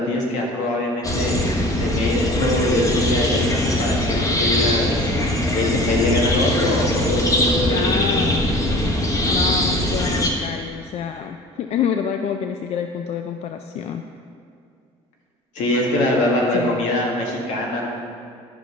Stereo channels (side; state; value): both; normal; correlation 0.41